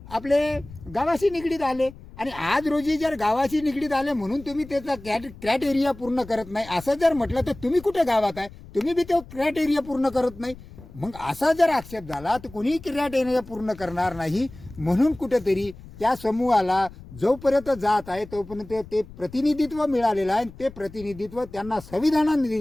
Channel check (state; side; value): noise; left; rumble, 18 dB below the sound